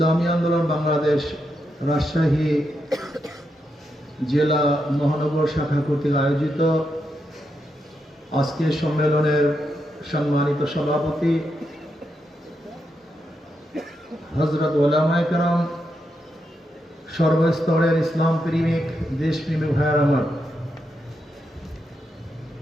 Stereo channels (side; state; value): both; normal; correlation 0.83